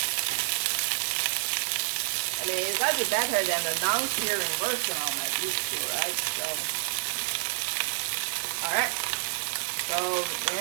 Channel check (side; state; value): left; silent; digital silence